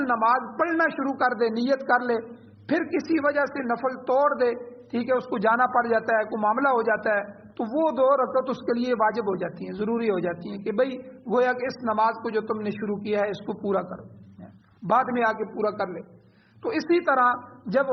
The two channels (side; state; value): both; identical; correlation 1.00